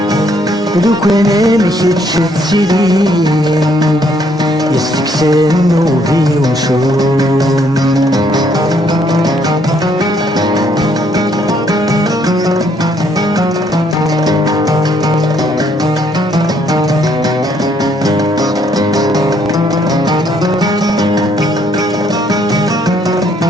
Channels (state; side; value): normal; both; correlation 0.68